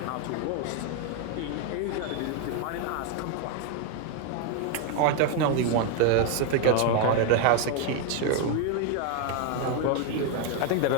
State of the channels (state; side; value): different; both; correlation 0.01